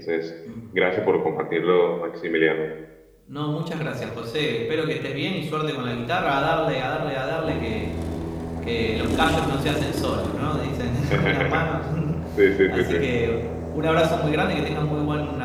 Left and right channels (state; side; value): identical; both; correlation 1.00